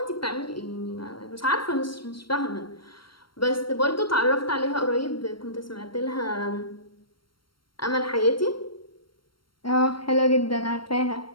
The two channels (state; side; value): late; right; 0.73 ms